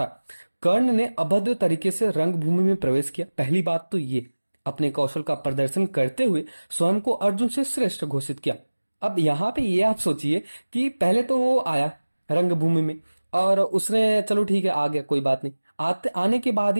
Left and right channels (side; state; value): both; inverted; correlation -1.00